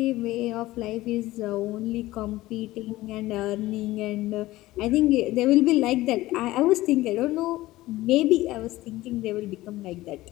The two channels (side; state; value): right; quieter; 17.5 dB